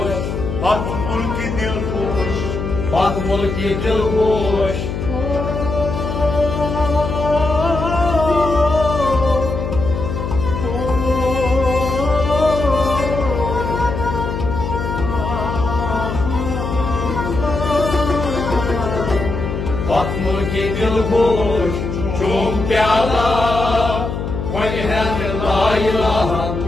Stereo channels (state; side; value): noise; left; hum, 4 dB below the sound